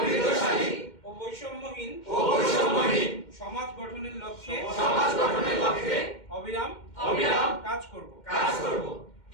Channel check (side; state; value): right; late; 2.1 ms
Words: ও বৈষম্যহীন সমাজ গঠনের লক্ষ্যে অবিরাম কাজ করব।